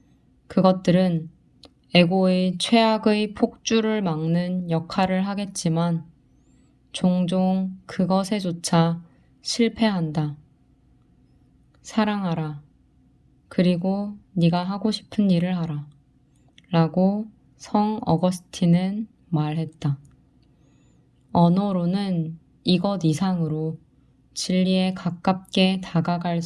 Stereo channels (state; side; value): identical; both; correlation 1.00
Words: 그것들은 에고의 최악의 폭주를 막는 역할을 하겠지만 종종 그것에조차 실패한다. 사랑하라. 그리고 네가 하고 싶은 일을 하라. 라고 성 어거스틴은 말했다. 언어로는 이것 이상으로 진리에 가깝게 다가갈